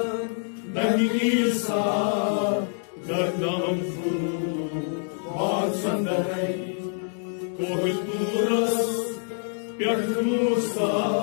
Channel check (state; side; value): silent; right; 61 dB below the other